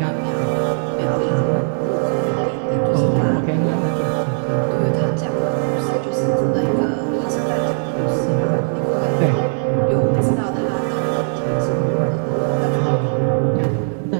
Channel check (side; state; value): left; silent; 57 dB below the other